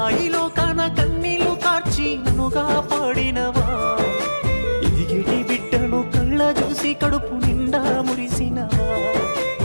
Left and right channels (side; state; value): both; inverted; correlation -1.00